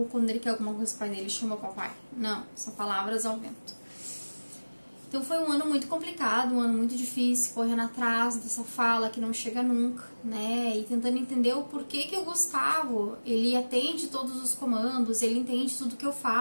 quando ele quer alguma coisa, pai dele chama papai. Não, são palavras ao vento. Então, foi um ano muito complicado, um ano muito difícil, correndo atrás dessa fala que não chega nunca, né? E tentando entender o porquê que o Gustavo, ele atende todos os comandos, ele entende tudo que eu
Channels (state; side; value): inverted; both; correlation -1.00